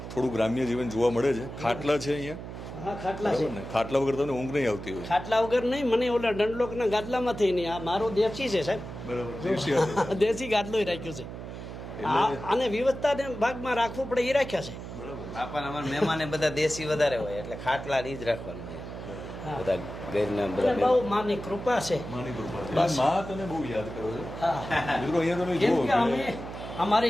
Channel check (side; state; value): right; noise; hum, 10 dB below the sound